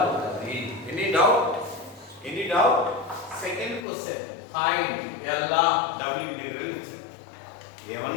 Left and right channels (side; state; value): right; drops out; at 3.9 s